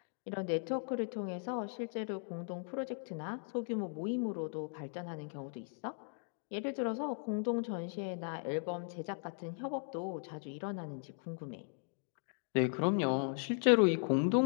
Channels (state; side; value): silent; right; 53 dB below the other